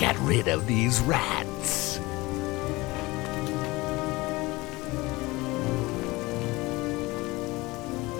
rid of these rats.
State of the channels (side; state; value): right; quieter; 21.8 dB